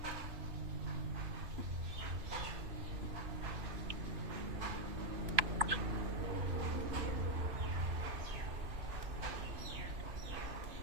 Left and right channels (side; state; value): left; late; 3.0 ms